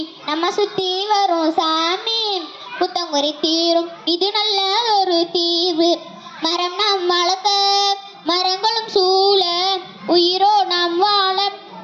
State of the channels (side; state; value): both; identical; correlation 1.00